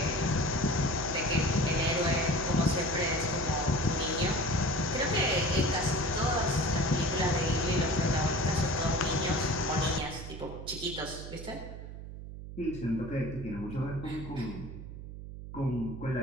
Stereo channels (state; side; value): noise; right; hum, 11 dB below the sound